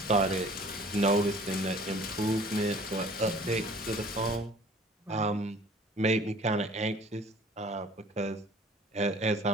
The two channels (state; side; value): normal; both; correlation 0.50